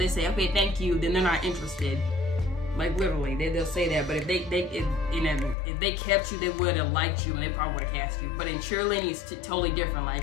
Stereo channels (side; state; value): right; drops out; at 5.6 s